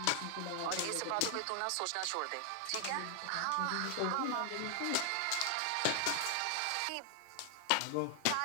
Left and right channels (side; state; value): both; different; correlation 0.00